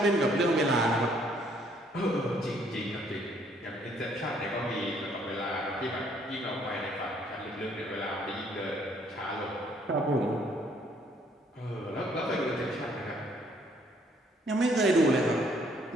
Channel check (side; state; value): both; normal; correlation 0.65